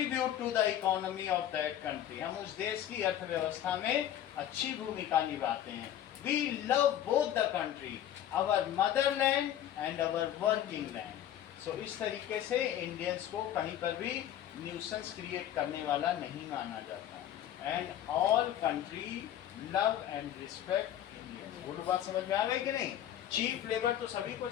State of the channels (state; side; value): quieter; right; 11.2 dB